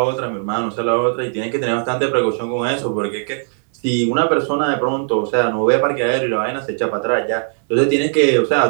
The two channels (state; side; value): silent; left; 59 dB below the other